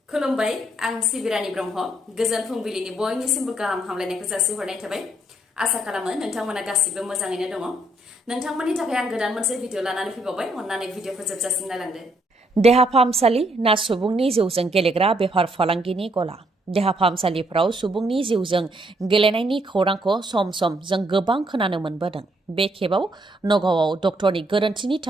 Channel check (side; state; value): both; normal; correlation 0.72